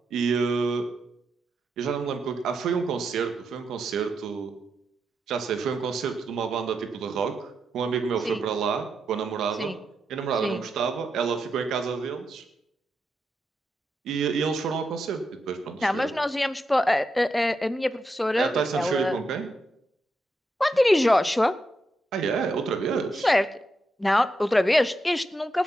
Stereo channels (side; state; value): both; normal; correlation 0.84